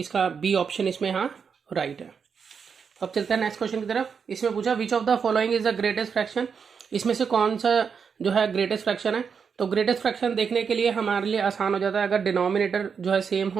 बी ऑप्शन इसमें यहाँ राइट है। अब चलते हैं नेक्स्ट क्वेश्चन की तरफ। इसमें पूछा which of the following is the greatest fraction. इसमें से कौन सा जो है ग्रेटेस्ट फ्रैक्शन है। तो ग्रेटेस्ट फ्रैक्शन देखने के लिए हमारे लिए आसान हो जाता है अगर डिनोमिनेटर जो है सेम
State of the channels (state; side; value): quieter; left; 6.3 dB